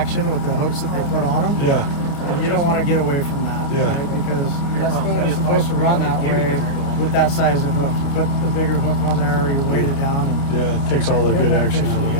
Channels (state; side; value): late; right; 29 ms